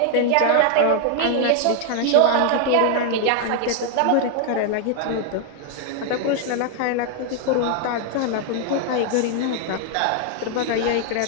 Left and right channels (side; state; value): both; different; correlation 0.00